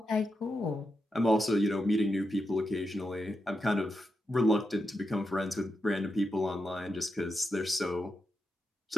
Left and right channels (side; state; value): both; normal; correlation 0.87